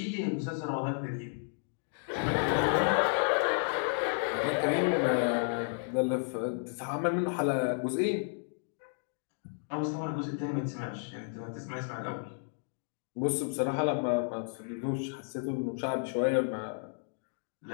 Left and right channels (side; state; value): right; silent; 56 dB below the other